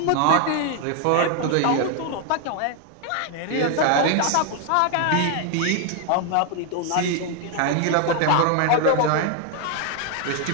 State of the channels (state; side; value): different; both; correlation 0.00